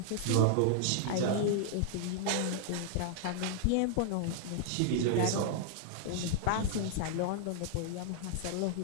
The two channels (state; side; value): different; both; correlation -0.01